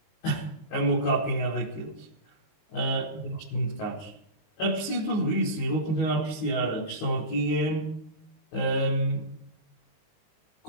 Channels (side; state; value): right; late; 19 ms